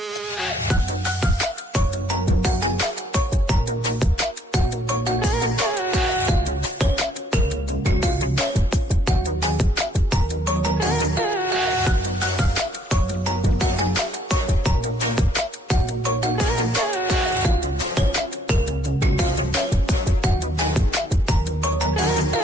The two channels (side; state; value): both; normal; correlation 0.67